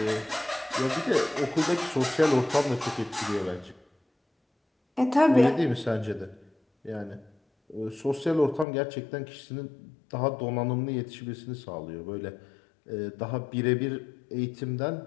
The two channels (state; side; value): drops out; right; at 8.7 s